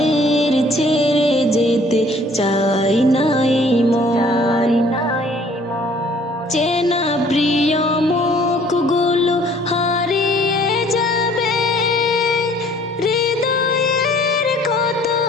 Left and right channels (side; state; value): both; normal; correlation 0.56